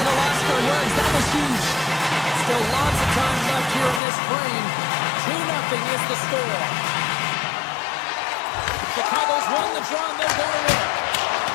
at a loss for words. That was huge. Still lots of time left here in this frame. 2-0 is the score. Chicago's won the draw and they're going to win.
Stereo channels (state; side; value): drops out; right; at 4.0 s